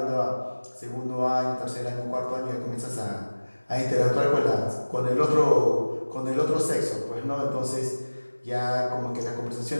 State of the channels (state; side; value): inverted; both; correlation -1.00